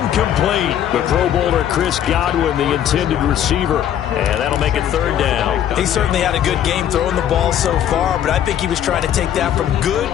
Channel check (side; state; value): right; quieter; 10.4 dB